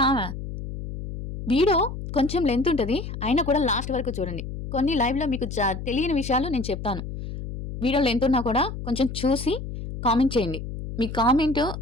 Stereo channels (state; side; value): noise; left; hum, 8 dB below the sound